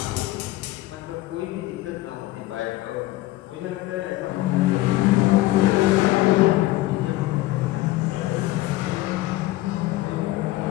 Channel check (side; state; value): right; quieter; 17.5 dB